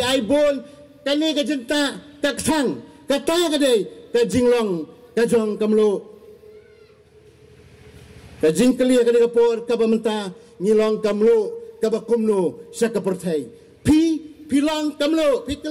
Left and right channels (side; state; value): both; identical; correlation 1.00